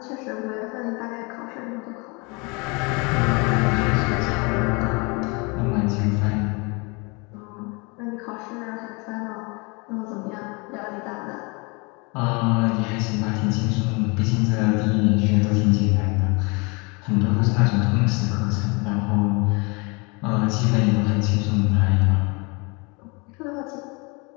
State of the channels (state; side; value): quieter; right; 29.5 dB